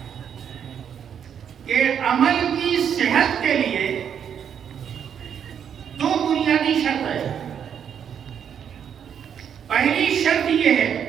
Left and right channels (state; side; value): quieter; left; 8.2 dB